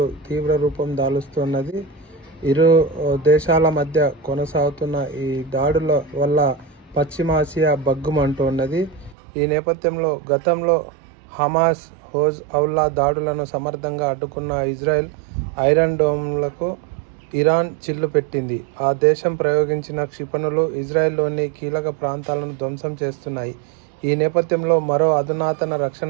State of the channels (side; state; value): left; drops out; at 9.2 s